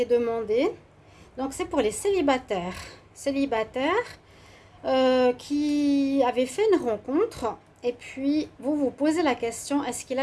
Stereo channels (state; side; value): identical; both; correlation 1.00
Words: demandée. Donc c'est pour les célibataires. Qui avaient fait une rencontre et puis vous vous posez la question, est-ce qu'il